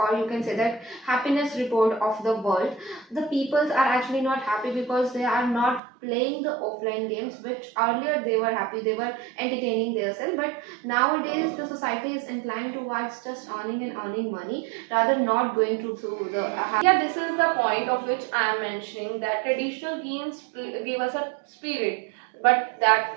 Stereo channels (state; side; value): drops out; left; at 5.8 s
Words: you can say that happiness report of the world, the peoples are actually not happy because they are not playing the offline games, which earlier they were happy, they were entertaining themselves. But nowadays the society is inclined towards just earning and earning money, rather not going through the. Yeah, this is the point of which I am mentioning, that traditional games give us a spirit, but that